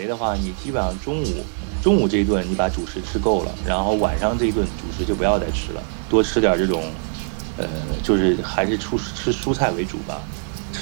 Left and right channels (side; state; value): left; silent; 58 dB below the other